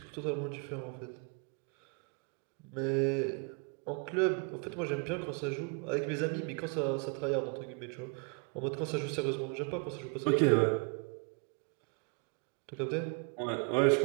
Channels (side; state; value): left; quieter; 36.7 dB